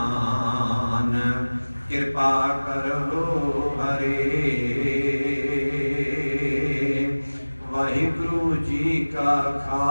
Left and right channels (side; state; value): both; inverted; correlation -1.00